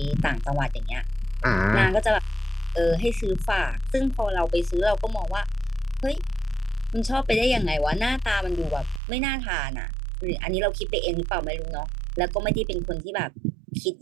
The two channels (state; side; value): drops out; left; at 9.0 s